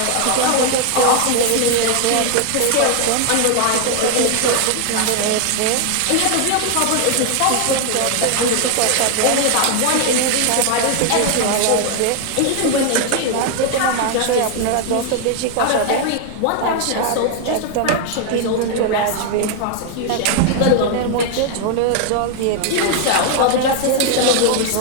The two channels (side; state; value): both; different; correlation 0.01